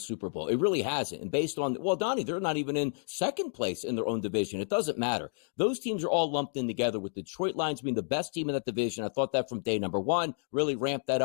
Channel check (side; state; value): right; silent; 57 dB below the other